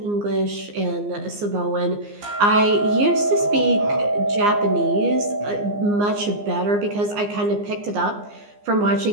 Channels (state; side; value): late; left; 15 ms